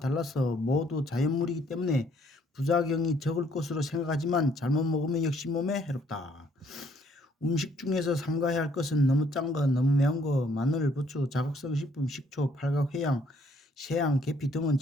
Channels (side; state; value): both; normal; correlation 0.65